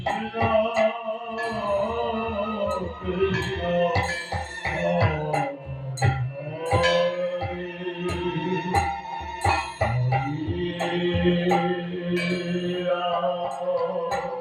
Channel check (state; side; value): identical; both; correlation 1.00